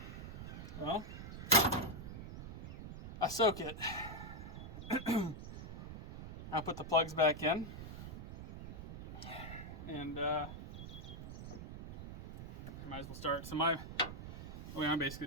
Well, I soak it. I'll put the plugs back in. And might as well start. So what I'm basically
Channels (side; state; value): right; noise; rumble, 9 dB below the sound